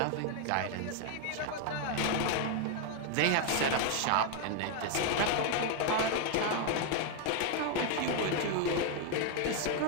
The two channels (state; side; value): different; both; correlation 0.00